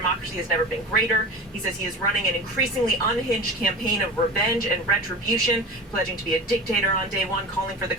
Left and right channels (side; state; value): both; normal; correlation 0.31